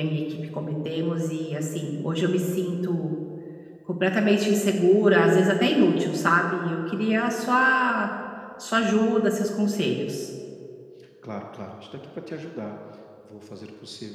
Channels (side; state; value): both; identical; correlation 1.00